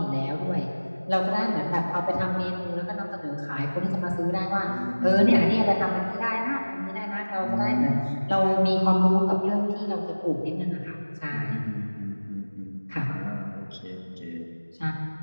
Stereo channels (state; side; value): inverted; both; correlation -1.00